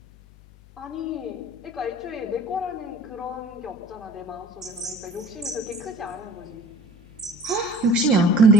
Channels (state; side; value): noise; left; hum, 23 dB below the sound